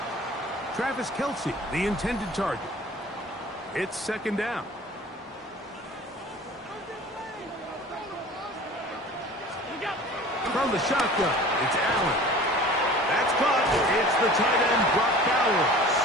Travis Kelsey, the intended target. It's 2nd down. From the shotgun, it's Allen. That's caught. It's the tight end, Brock Bowers.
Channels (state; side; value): normal; both; correlation 0.43